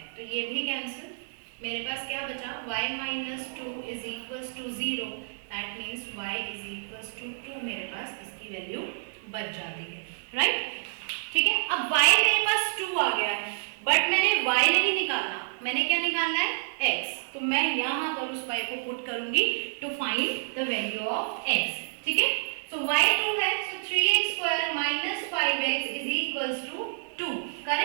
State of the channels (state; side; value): silent; left; digital silence